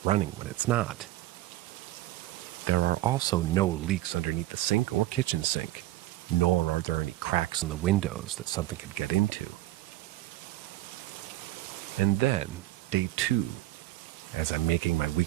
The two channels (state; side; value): quieter; left; 15.9 dB